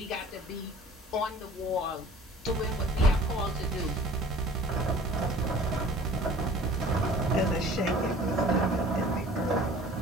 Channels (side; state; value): both; normal; correlation 0.48